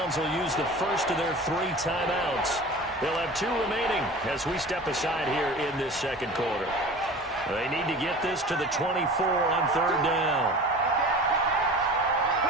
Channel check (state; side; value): normal; both; correlation 0.38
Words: will use the first of their 3 timeouts. They'll have 2 remaining as we step aside here in this second quarter. They need to get this to the 24 on 3rd down.